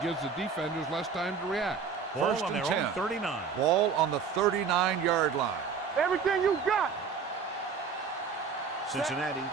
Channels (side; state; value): left; quieter; 5.8 dB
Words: gives the defenders less time to react. Ball First on and their 10. own 39. Ball on the 39-yard line. Everything you got. Cincinnati